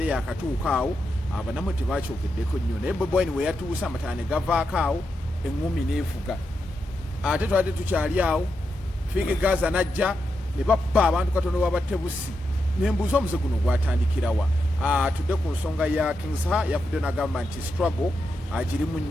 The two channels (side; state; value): both; normal; correlation 0.85